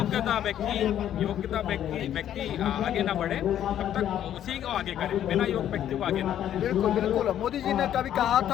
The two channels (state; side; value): quieter; right; 10.9 dB